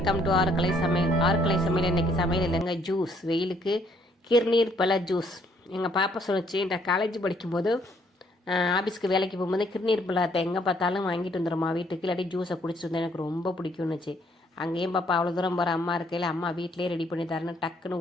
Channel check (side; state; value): both; normal; correlation 0.66